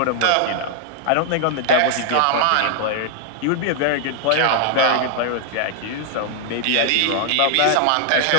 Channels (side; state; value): both; different; correlation 0.00